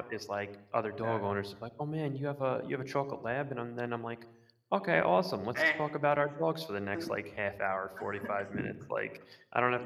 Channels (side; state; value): both; identical; correlation 1.00